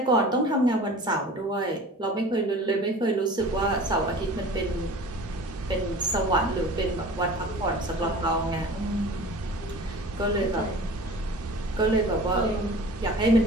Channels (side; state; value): both; normal; correlation 0.41